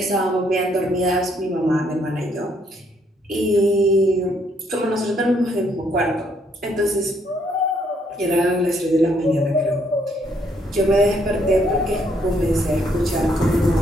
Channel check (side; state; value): both; normal; correlation 0.70